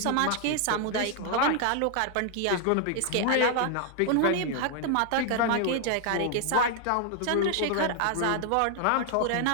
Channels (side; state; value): both; different; correlation 0.00